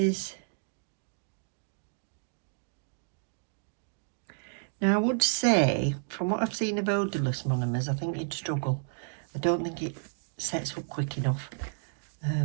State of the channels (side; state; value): left; silent; digital silence